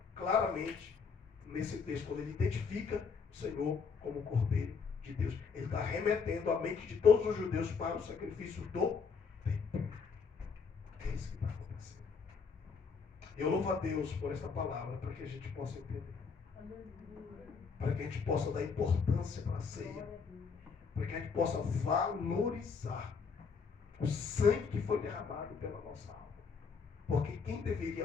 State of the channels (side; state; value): right; quieter; 5.5 dB